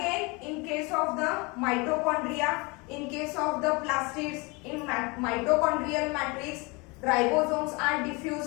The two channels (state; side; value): quieter; right; 27.4 dB